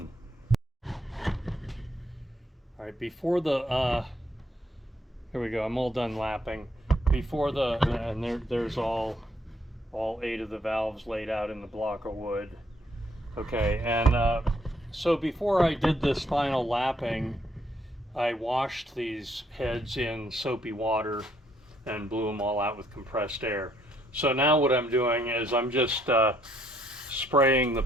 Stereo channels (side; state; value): both; normal; correlation 0.70